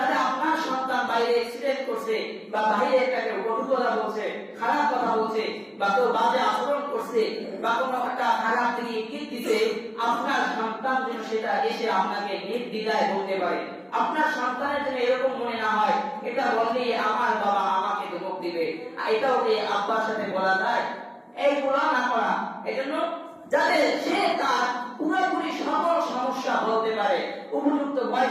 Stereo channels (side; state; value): both; identical; correlation 1.00